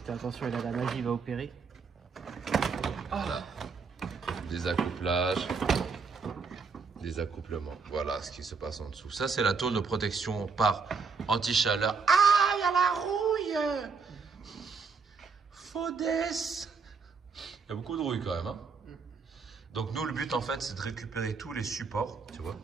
Fais attention, il a la magie, il va opérer. Voilà. Des accouplages. Des accouplements. Voilà ce qui se passe en dessous. Ça, c'est la tôle de protection par anti-chaleur. Ah, il y a la rouille. Faudesse. Il y a beaucoup de rouille quand même. Hein. Donc nous, le but en fait, c'est de récupérer tous les supports, tu vois,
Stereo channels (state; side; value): quieter; left; 5.1 dB